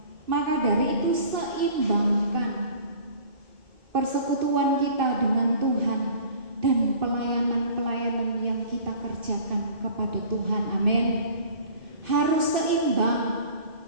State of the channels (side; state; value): left; late; 2.6 ms